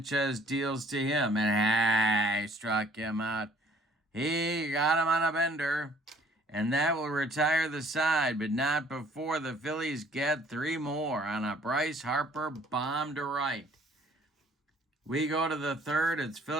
deals to him, and he struck him out. He got him on a bender, and that will retire the side, but not before the Phillies get 3 more on a Bryce Harper bomb to right. We go to the third. It's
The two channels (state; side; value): normal; both; correlation 0.58